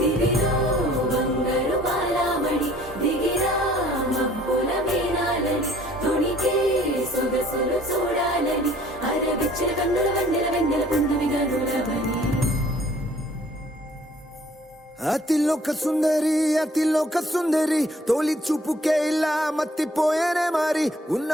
బంగారు బాలామణి దిగిరా మబ్బుల మేనాలని తుణికే సొగసులు చూడాలని అరవిచ్చిన కన్నుల వన్నెల వెన్నెల పుందువిగా నులవని అతిలోక సుందరి తోలి చూపుకే ఇలా మత్తిపోయేనే మారి ఉన్న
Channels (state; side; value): normal; both; correlation 0.57